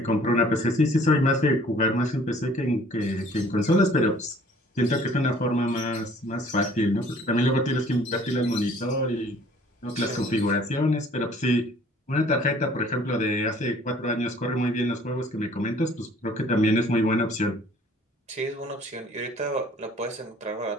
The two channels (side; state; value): both; normal; correlation 0.55